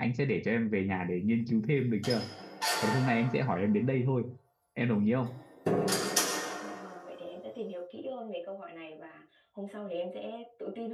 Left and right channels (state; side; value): identical; both; correlation 1.00